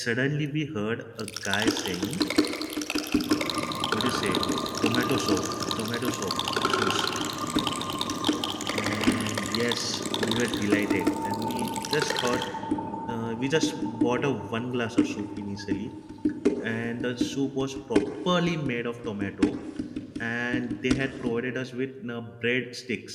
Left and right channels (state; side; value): identical; both; correlation 1.00